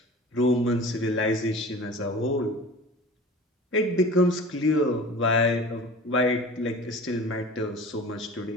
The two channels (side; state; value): both; normal; correlation 0.39